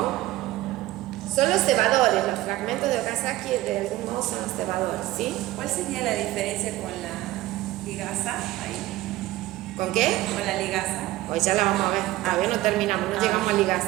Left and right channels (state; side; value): quieter; left; 16.8 dB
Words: Son los cebadores, los fragmentos de Okazaki de algún modo son los cebadores, ¿sí? ¿Cuál sería la diferencia con la ligasa ahí? ¿Con qué? Con la ligasa. Hoy ya la vamos a ver. Todavía no terminamos, no llegamos a